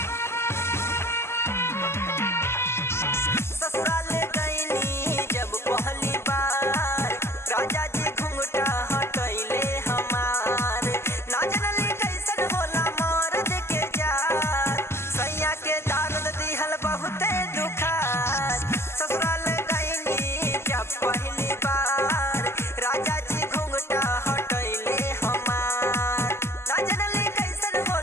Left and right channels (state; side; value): late; right; 0.12 ms